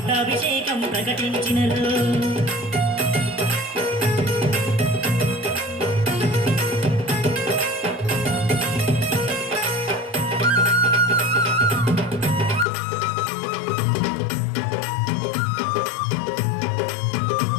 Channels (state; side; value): drops out; right; at 12.7 s